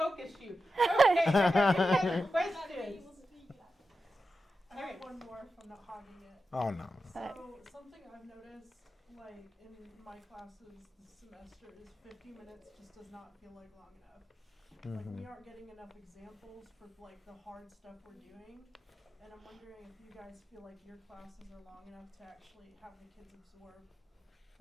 you. Okay, any other questions? I have one more if I'm not hogging it. Oh, no. So something I've noticed, like in my classes this semester, is 50 minutes just does not feel like long enough. Like we aren't getting enough examples for like the hard stuff we're doing, and I'm wondering if you guys feel like your classes are long enough to actually have the kids absorb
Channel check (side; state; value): both; normal; correlation 0.90